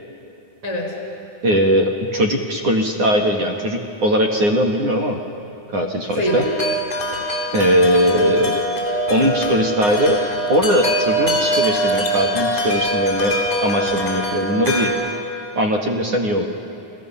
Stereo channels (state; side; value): late; left; 9.7 ms